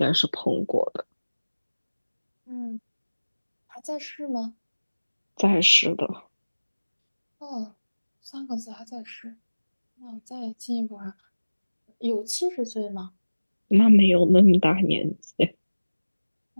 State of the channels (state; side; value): inverted; both; correlation -1.00